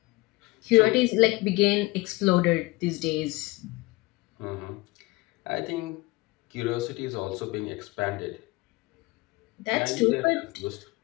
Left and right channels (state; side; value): quieter; right; 22.4 dB